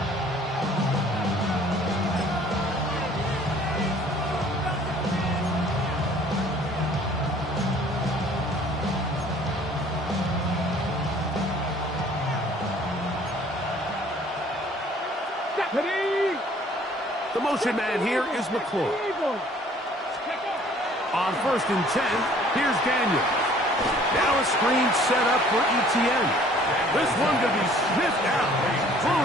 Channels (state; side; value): normal; both; correlation 0.55